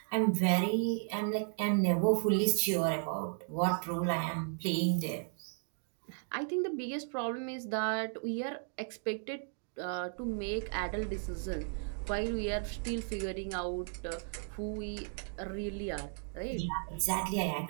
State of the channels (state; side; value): silent; left; 55 dB below the other